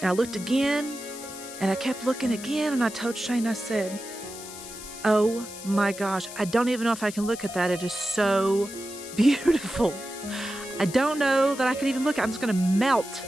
I looked again, and I kept looking again, and I told Shane, I said, oh my gosh, I don't even know if I can look at that. It is so beautiful. I don't know that I could even look. I'm just gonna melt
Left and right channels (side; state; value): left; noise; hiss, 13 dB below the sound